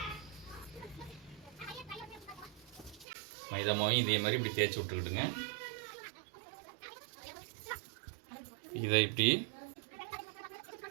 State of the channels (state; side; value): drops out; left; at 3.1 s